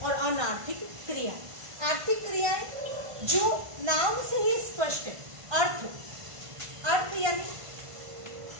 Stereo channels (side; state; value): left; late; 1.5 ms